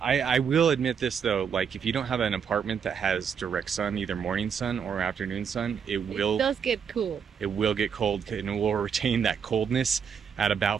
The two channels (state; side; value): quieter; left; 7.1 dB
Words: will admit this though, like if you don't have an apartment that has direct sun, either morning sun or afternoon sun, it does get cool. It will get cold and it will retain that coldness at